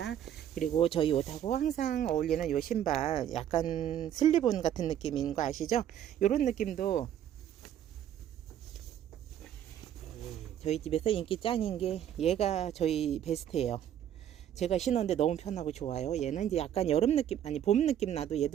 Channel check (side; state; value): left; quieter; 10.5 dB